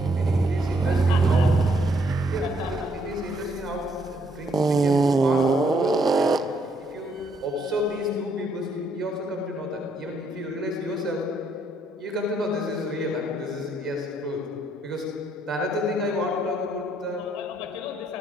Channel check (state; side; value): normal; both; correlation 0.71